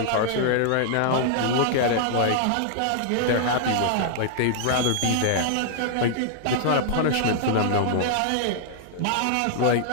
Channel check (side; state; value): both; different; correlation -0.01